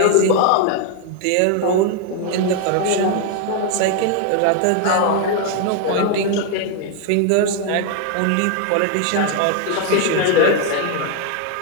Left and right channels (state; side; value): different; both; correlation 0.00